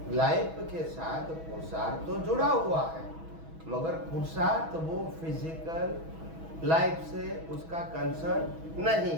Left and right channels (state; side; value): late; left; 6.2 ms